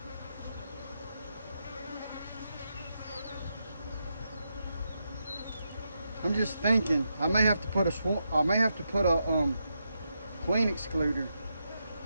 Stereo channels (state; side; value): inverted; both; correlation -0.84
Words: I'm just thinking I may have to put a queen excluder